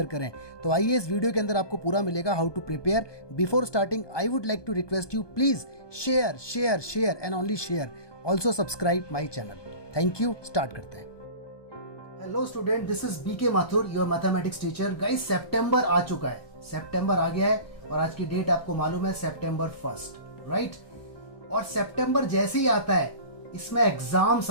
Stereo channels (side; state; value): right; late; 1.2 ms